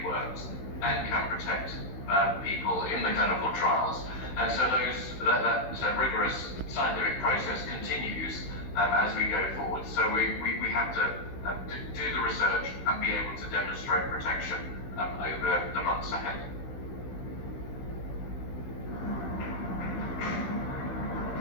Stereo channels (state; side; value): late; right; 16 ms